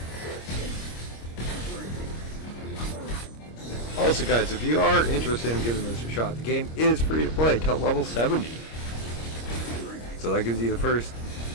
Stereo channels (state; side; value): late; right; 26 ms